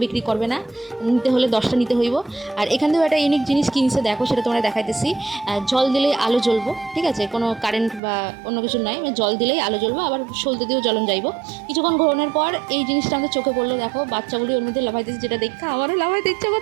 বিক্রি করবে না, নিতে হলে 10টা নিতে হইব। আর এখান থেকেও একটা ইউনিক জিনিস কিনছে, দেখো সেটা তোমরা দেখাইতেছি। জল দিলেই আলো জ্বলবো, ঠিক আছে, কোনো কারেন্ট বা অন্য কিছু নয়, জল দিলেই আলো জ্বলবো, আবার সলতে দিয়েও জ্বলন যাইব। কিছুক্ষণ ঘোরানোর পর এই জিনিসটা আমাদের চোখে পড়লো। দেখো বাচ্চাগুলি ওর মধ্যে লাফাইতেছে, যেটা দেখা আমারও লাফাইতে ইচ্ছা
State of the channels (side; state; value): left; drops out; at 8.0 s